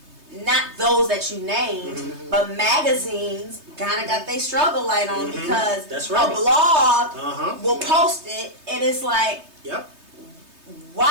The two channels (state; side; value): late; left; 3.2 ms